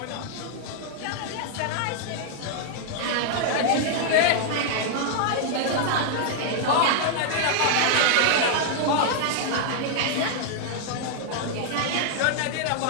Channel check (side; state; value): both; different; correlation -0.01